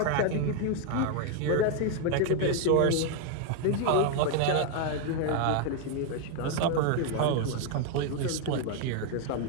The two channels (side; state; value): both; different; correlation 0.00